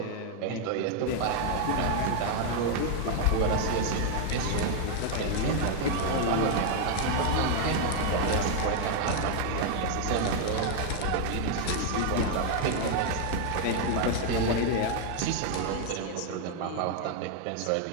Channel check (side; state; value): both; different; correlation 0.00